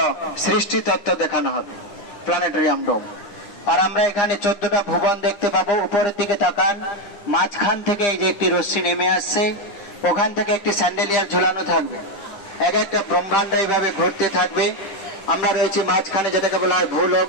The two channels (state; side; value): late; right; 9.9 ms